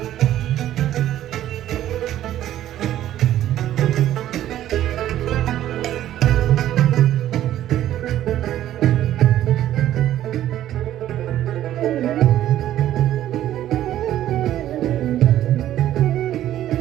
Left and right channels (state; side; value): quieter; left; 12.6 dB